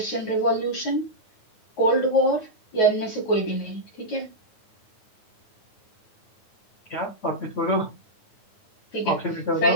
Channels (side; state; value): right; late; 9.3 ms